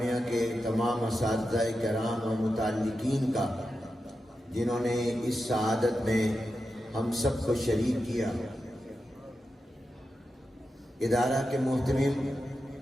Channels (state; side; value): normal; both; correlation 0.90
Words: کے تمام اساتذہ کرام و متعلقین کا جنہوں نے اس سعادت میں ہم سب کو شریک کیا۔ ادارہ کے محتمم